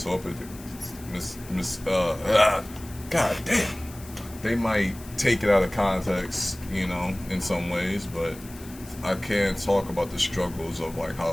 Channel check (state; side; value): noise; left; hiss, 19 dB below the sound